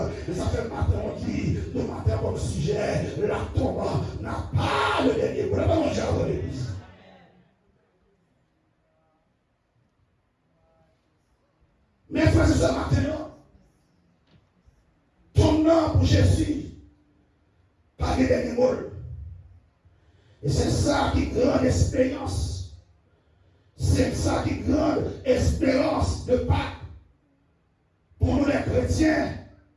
Et ça fait matin, on dit, de matin comme sujet, la tombe n'a pas le dernier mot. C'est mon diable l'église. Mais frère, c'est ce matin, ton nom pour Jésus, pas de dernier mot. Et c'est ça qui est grande expérience. C'est ça qui est grande espérance de Pâques. Pour nous les chrétiens,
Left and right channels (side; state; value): both; identical; correlation 1.00